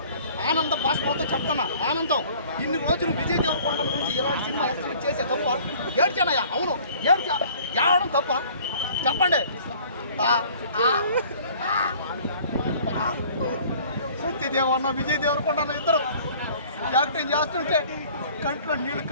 ఆనంద భాష మొత్తం చెప్తున్నా. ఆనందం. ఇన్ని రోజులు విజయ్ దేవరకొండ నుంచి ఇలాంటి సినిమా ఎక్స్పెక్ట్ చేసే తప్ప ఏడ్చానయ్యా. అవును, ఏడవడం తప్ప చెప్పండి. సత్యదేవన్న విజయ్ దేవరకొండ ఇద్దరు యాక్టింగ్ చేస్తుంటే కంట్లో నీళ్లు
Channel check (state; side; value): inverted; both; correlation -0.51